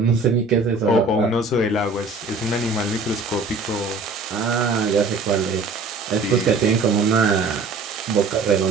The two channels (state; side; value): quieter; left; 3.7 dB